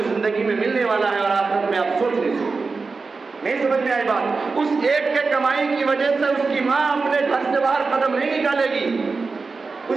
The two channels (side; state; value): left; quieter; 4.3 dB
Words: زندگی میں ملنے والا ہے اور آخرت میں آپ سوچ نہیں سکتے۔ نہیں سمجھ میں آئی بات؟ اس ایک کے کمائی کی وجہ سے اس کی ماں اپنے گھر سے باہر قدم نہیں نکالے گی،